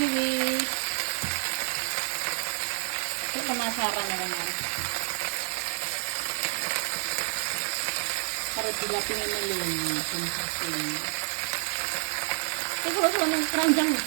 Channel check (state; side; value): silent; left; 59 dB below the other